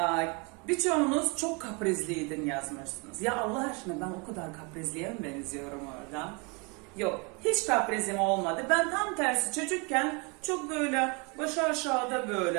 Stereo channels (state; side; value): quieter; left; 31.1 dB